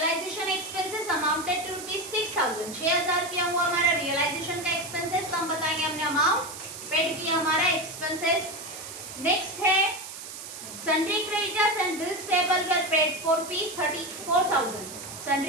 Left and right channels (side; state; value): right; noise; hiss, 11 dB below the sound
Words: एक्सपेंसेस अमाउंटेड टू ₹6000। 6000 रुपया हुआ हमारा रियलाइजेशन का एक्सपेंसेस, तो हम बताएंगे हमने अमाउंट पेड किया हमारा एक्सपेंसेस। नेक्स्ट है sundry creditors and bills payable were paid for ₹34,000।